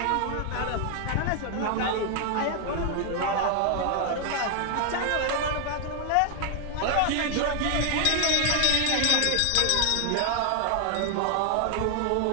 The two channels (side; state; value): both; different; correlation 0.00